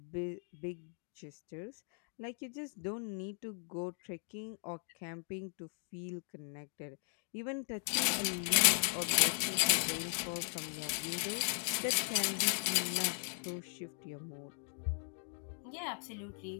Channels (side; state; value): right; silent; 52 dB below the other